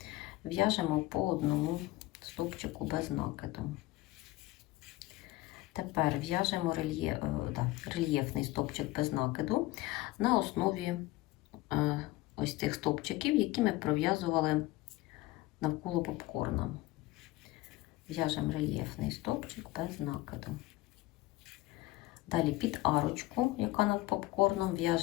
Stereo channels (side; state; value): right; quieter; 18.8 dB